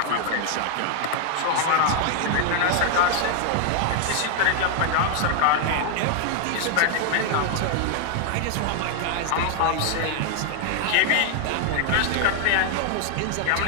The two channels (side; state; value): both; different; correlation 0.00